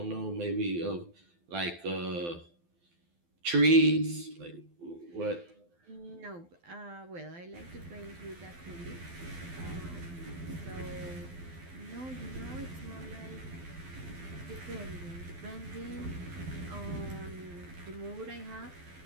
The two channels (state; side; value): late; left; 12 ms